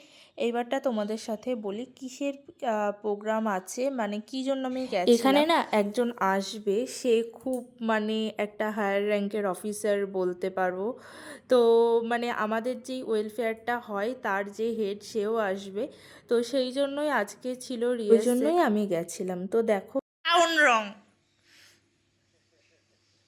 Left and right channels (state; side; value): identical; both; correlation 1.00